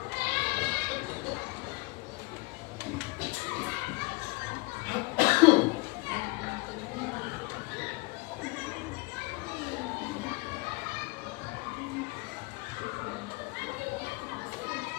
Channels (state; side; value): quieter; right; 25.0 dB